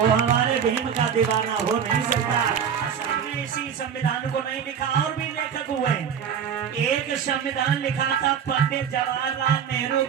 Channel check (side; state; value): left; quieter; 7.8 dB